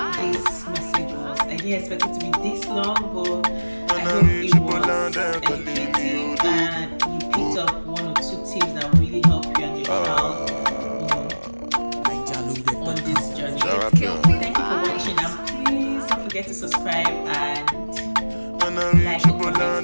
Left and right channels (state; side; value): inverted; both; correlation -1.00